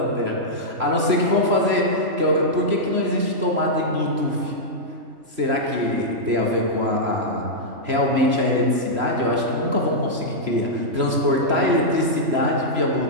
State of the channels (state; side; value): late; left; 3.0 ms